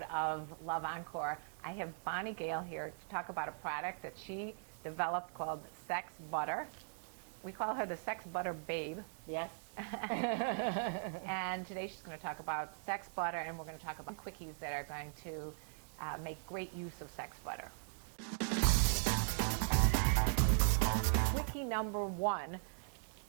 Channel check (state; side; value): silent; left; digital silence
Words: of LoveEncore. I have Bonnie Gayle here to talk about a product that she developed called Sex Butter. We call her the Sex Butter Babe. Yes. And today she's going to talk about Sex Butter, and we're going to talk about quickies that are going to make great use of Sex Butter. Quickie number one.